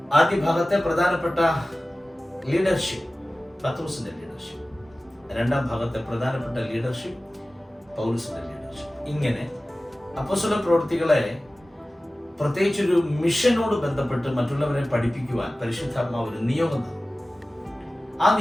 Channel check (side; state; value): both; normal; correlation 0.97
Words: ആദ്യ ഭാഗത്തെ പ്രധാനപ്പെട്ട ലീഡർഷിപ്പ് പത്രോസിന്റെ ലീഡർഷിപ്പ്, 2-ാം ഭാഗത്തെ പ്രധാനപ്പെട്ട ലീഡർഷിപ്പ് പൗലോസിന്റെ ലീഡർഷിപ്പ്. ഇങ്ങനെ അപ്പോസ്തല പ്രവൃത്തികളെ പ്രത്യേകിച്ചൊരു മിഷനോട് ബന്ധപ്പെട്ട് മറ്റുള്ളവരെ പഠിപ്പിക്കുവാൻ പരിശുദ്ധാത്മാവ് ഒരു നിയോഗം തന്നു. ആ